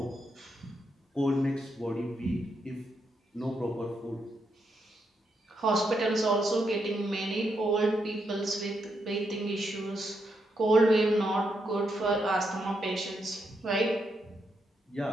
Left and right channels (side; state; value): both; normal; correlation 0.81